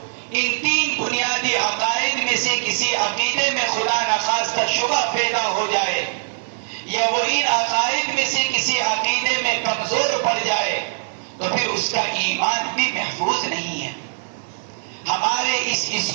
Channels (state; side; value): silent; left; 63 dB below the other